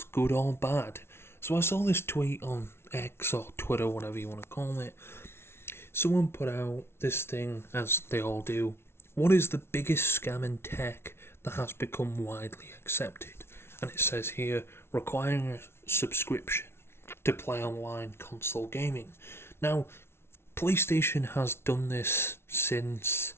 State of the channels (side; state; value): right; late; 0.12 ms